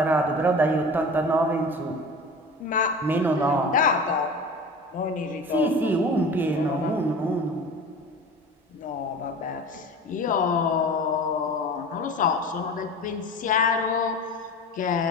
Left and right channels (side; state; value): both; normal; correlation 0.36